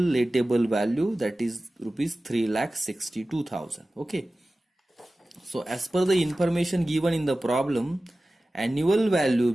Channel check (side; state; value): both; normal; correlation 0.96